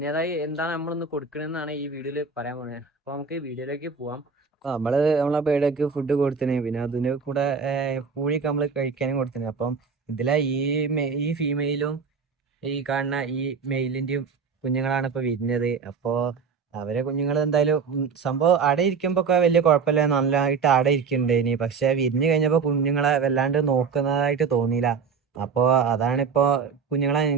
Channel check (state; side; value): quieter; left; 5.6 dB